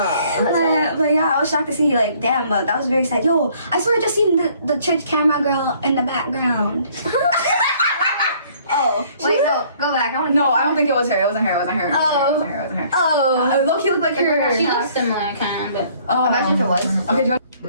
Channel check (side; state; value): both; inverted; correlation -0.60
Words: yeah, I was shocked to see, like, damn, but that was very sad. Yo, I swear I just seen the church camera girl in the background. Oh, wait, no, go back. I don't think it was her. It wasn't her. Oh, Low-key looked like her. She looks similar, kind of, but Imagine if it was. Okay, do